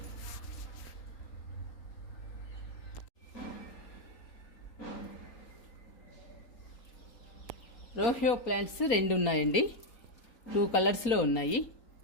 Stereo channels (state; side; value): late; right; 3.9 ms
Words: రోహియో ప్లాంట్స్ 2 ఉన్నాయండి, 2 కలర్స్లో ఉన్నాయి.